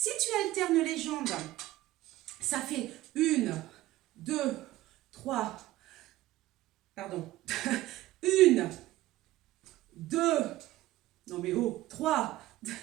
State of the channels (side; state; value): left; quieter; 16.3 dB